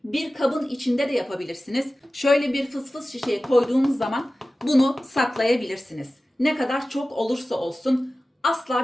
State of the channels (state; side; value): normal; both; correlation 0.96